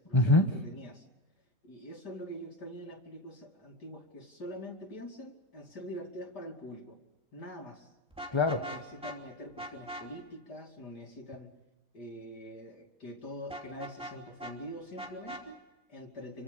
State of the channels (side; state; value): both; normal; correlation 0.19